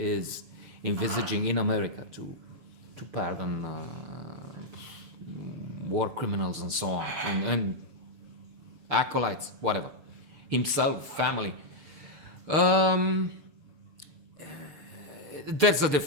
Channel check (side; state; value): left; late; 6.6 ms